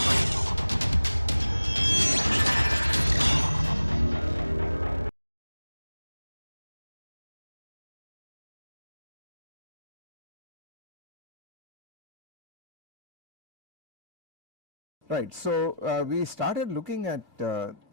So, we started looking at the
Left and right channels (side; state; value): both; inverted; correlation -0.84